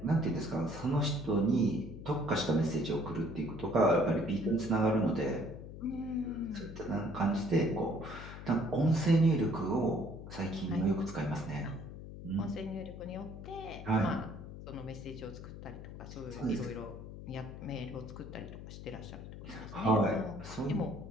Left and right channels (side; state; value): left; noise; hum, 11 dB below the sound